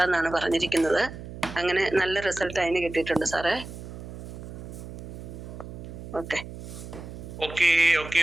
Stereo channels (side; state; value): right; noise; hum, 11 dB below the sound